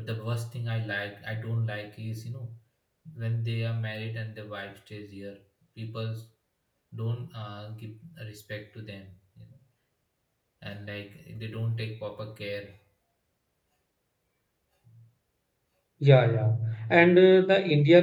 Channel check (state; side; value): identical; both; correlation 1.00